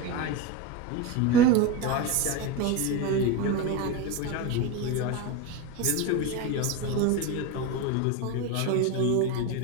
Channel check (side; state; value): both; different; correlation 0.06